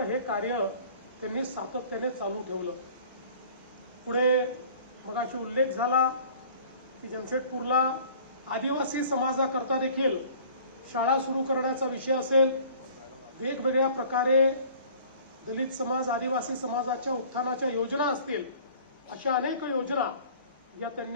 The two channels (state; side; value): inverted; both; correlation -0.49